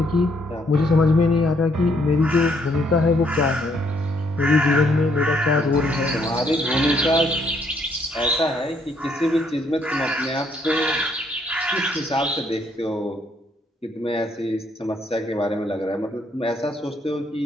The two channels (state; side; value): normal; both; correlation 0.70